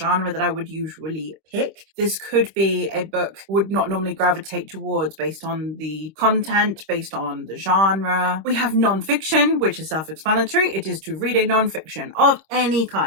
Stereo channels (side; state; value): left; late; 26 ms